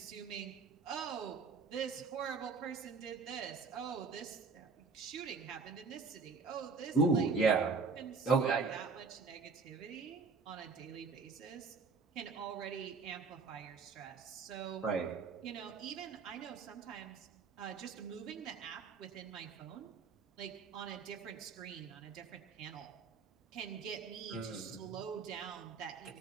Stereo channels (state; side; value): quieter; left; 4.6 dB